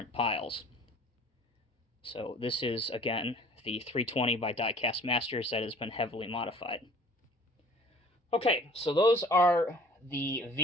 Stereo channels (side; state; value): both; normal; correlation 0.49